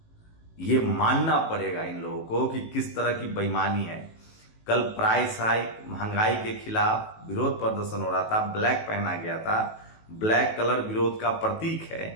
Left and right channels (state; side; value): late; right; 18 ms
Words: ये मानना पड़ेगा इन लोगों को कि किस तरह की बेईमानी है। कल प्राइस हाइक, महंगाई के खिलाफ विरोध प्रदर्शन हो रहा था, ब्लैक पहना गया था, ब्लैक कलर विरोध का प्रतीक